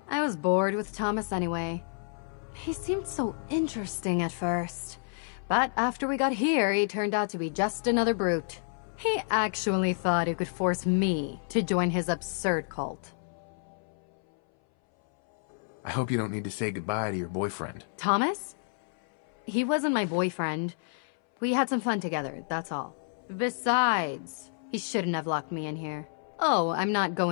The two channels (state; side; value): silent; right; 58 dB below the other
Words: I was bored with Thomas anyway. He seemed so interesting at first. But after we got here, he turned out to be just another brute. He actually thought he could force me to join his absurd cult. I hope you don't need to say goodbye to your boyfriend. Thomas? He wasn't my boyfriend. We had some fun together, that's all. Besides, he shouldn't have locked me in here. Oh, I'm not